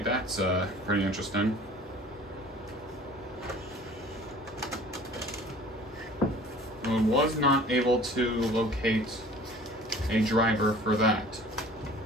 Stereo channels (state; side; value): normal; both; correlation 0.47